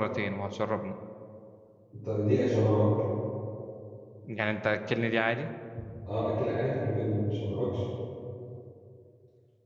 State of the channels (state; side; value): identical; both; correlation 1.00